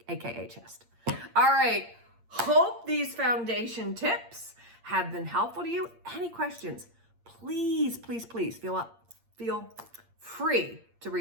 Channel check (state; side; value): late; left; 8.6 ms